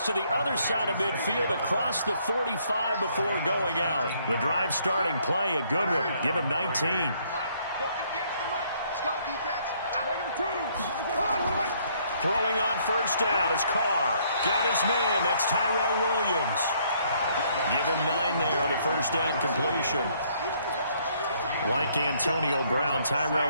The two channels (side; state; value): both; inverted; correlation -0.66